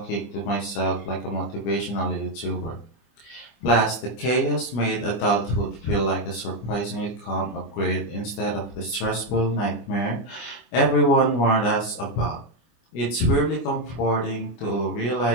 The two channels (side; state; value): right; late; 25 ms